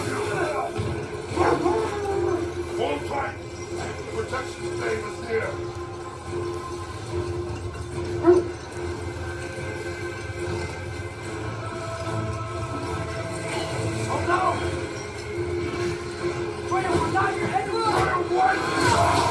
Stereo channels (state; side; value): identical; both; correlation 1.00